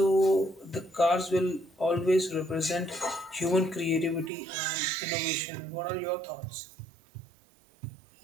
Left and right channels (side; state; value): left; drops out; at 4.3 s